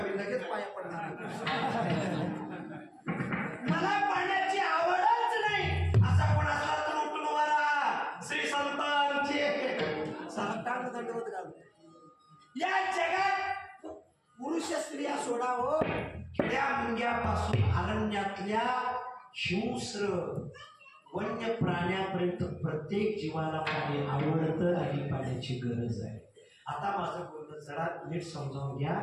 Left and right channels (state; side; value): identical; both; correlation 1.00